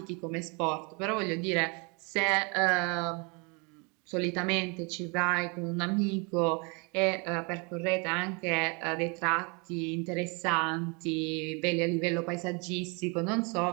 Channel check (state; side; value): quieter; left; 31.7 dB